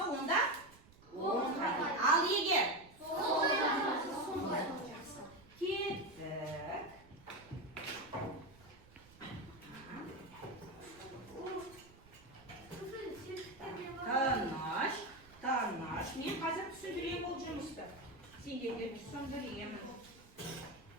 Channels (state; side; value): noise; right; rumble, 23 dB below the sound